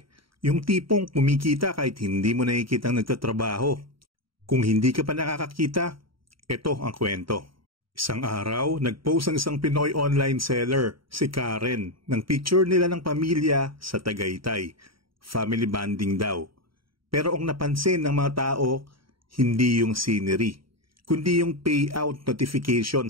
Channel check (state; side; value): late; left; 0.74 ms